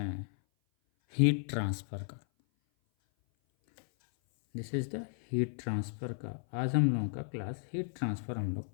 हैं हीट ट्रांसफ़र का। This is the heat transfer का आज हम लोगों का क्लास हीट ट्रांसफ़र हम लोग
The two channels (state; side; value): silent; right; 55 dB below the other